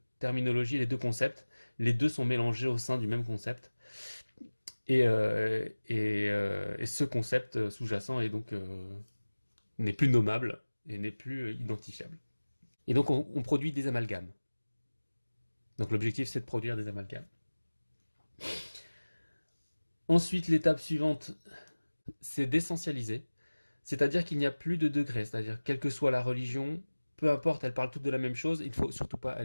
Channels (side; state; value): both; inverted; correlation -1.00